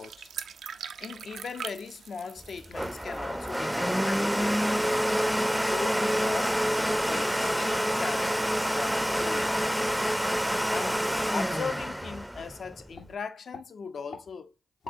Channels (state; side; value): normal; both; correlation 0.98